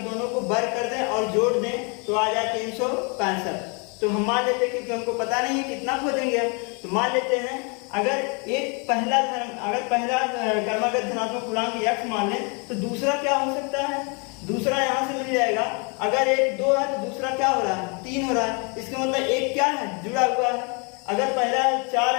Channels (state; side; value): quieter; right; 33.8 dB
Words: को वर्ग कर दें और जोड़ दें तो आ जाए 365। तो हम मान लेते हैं, क्योंकि हमको पता नहीं है कितना खोजेंगे हम, तो मान लेते हैं अगर पहला कर्मगत धनात्मक पूर्णांक x मान लें तो दूसरा क्या हो सकता है, दूसरा यहाँ से मिल जाएगा। अगर 1, 2 है तो दूसरा क्या हो रहा है, 3 हो रहा है। इसका मतलब एक क्या है, जुड़ा हुआ है। अगर पहला 4